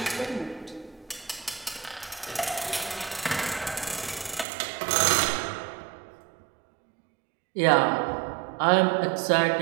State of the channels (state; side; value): drops out; left; at 4.5 s